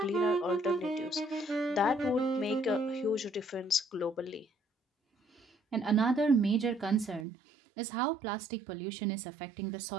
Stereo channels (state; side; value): drops out; left; at 7.2 s